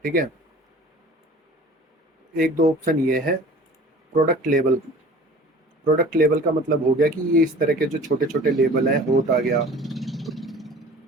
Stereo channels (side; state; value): both; normal; correlation 0.44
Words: ठीक है। एक दो ऑप्शन ये है। प्रोडक्ट लेबल, प्रोडक्ट लेबल का मतलब हो गया कि ये इस तरह के जो छोटे छोटे लेबल हैं, होट आ गया